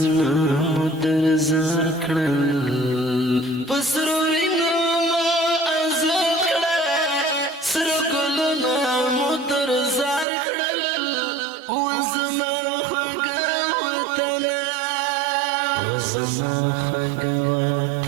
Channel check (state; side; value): drops out; left; at 10.2 s